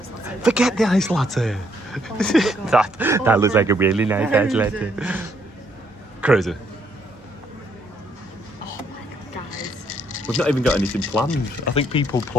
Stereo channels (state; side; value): normal; both; correlation 0.70